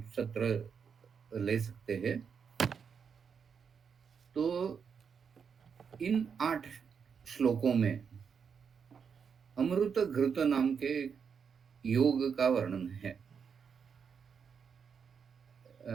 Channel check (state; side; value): quieter; left; 6.6 dB